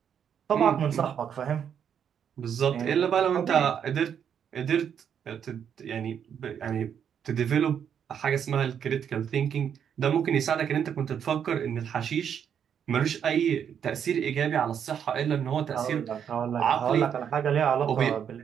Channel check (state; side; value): quieter; left; 8.3 dB